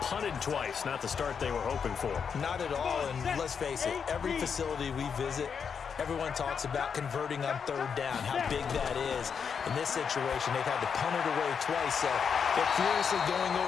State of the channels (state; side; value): quieter; right; 6.6 dB